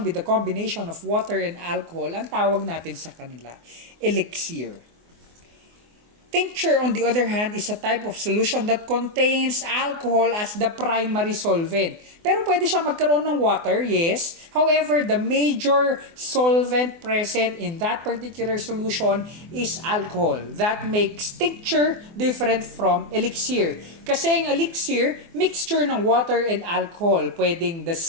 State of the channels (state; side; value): late; left; 24 ms